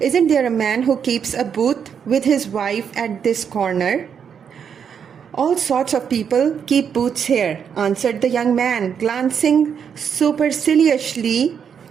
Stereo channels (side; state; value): left; quieter; 7.4 dB